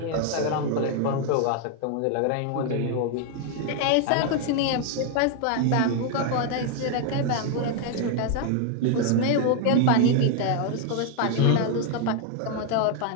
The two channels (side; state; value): both; different; correlation 0.01